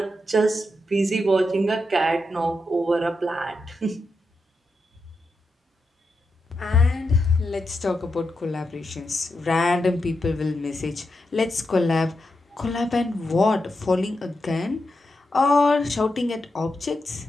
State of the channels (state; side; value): normal; both; correlation 0.86